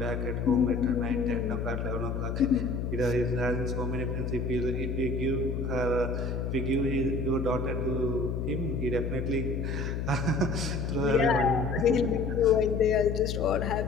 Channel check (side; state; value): left; noise; hum, 2 dB below the sound